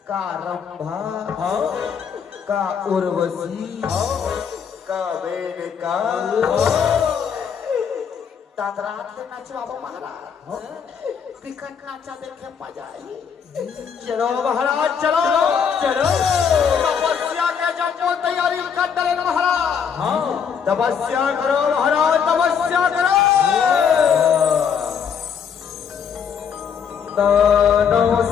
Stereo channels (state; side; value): quieter; right; 7.1 dB